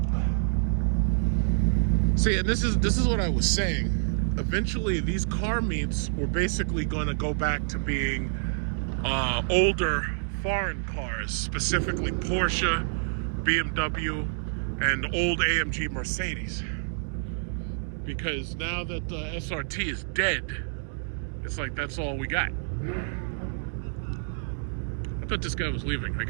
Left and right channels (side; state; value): left; silent; digital silence